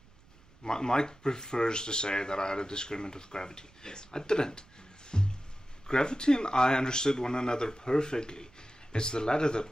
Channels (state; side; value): noise; right; rumble, 28 dB below the sound